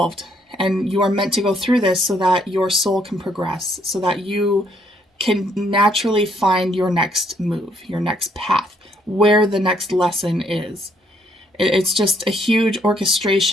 and you are meant to go through this so that your soul can progress, so that you can naturally find your next move, your next path, where the next lesson is. It's just a huge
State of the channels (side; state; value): both; normal; correlation 0.69